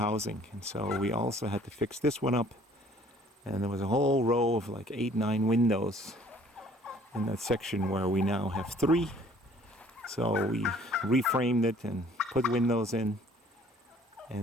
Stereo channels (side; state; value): both; normal; correlation 0.56